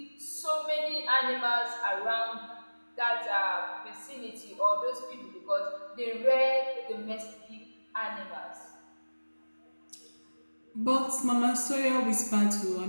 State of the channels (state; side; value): inverted; both; correlation -1.00